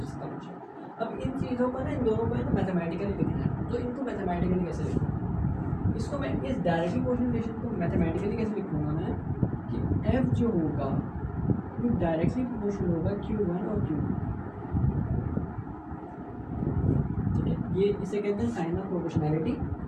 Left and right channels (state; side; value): identical; both; correlation 1.00